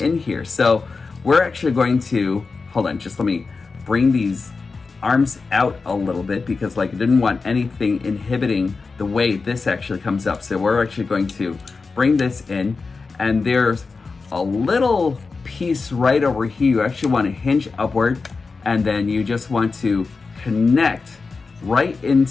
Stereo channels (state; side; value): quieter; right; 4.4 dB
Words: here. So we're actually going to, hold on, just let me bring these arms out a little bit, because like I didn't want anything inhibiting the way this actually comes up. So we're actually going to bring this in, and there's a little piece right over here. You actually want to hinge upward, and then you just want to connect right